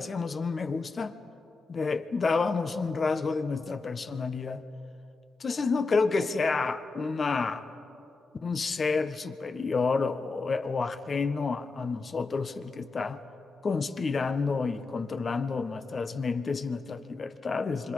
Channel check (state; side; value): quieter; right; 4.1 dB